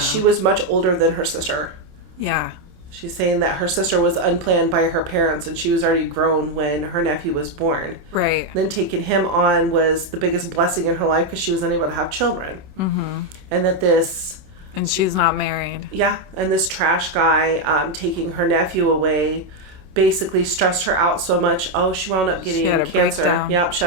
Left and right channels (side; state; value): left; late; 27 ms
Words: was much older than her sister. Yeah. She's saying that her sister was unplanned by her parents and she was already grown when her nephew was born. Right. Then taking him on was the biggest blessing in her life because she was unable to have children. Mm-hmm. And that this... And she's not married. Yeah. And this trash guy taking her nephew away basically stressed her out so much. Oh, she wound up getting cancer. Breakdown. Yep, she